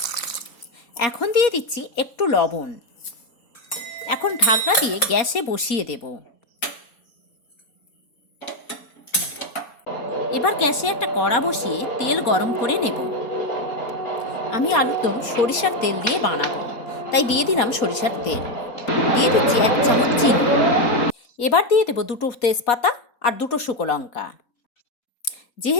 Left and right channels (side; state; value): right; late; 4.2 ms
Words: এখন দিয়ে দিচ্ছি একটু লবণ। এখন ঢাকনা দিয়ে গ্যাসে বসিয়ে দেব। এবার গ্যাসে একটা কড়া বসিয়ে তেল গরম করে নেব। আমি আলুর দম সরিষার তেল দিয়ে বানাবো, তাই দিয়ে দিলাম সরিষার তেল। দিয়ে দিচ্ছি 1 চামচ চিনি। এবার দিয়ে দেবো 2টো তেজপাতা আর 2টো শুকনো লঙ্কা।